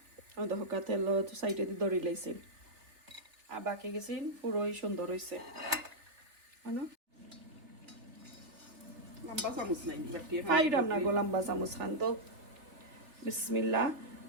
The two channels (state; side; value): late; left; 3.6 ms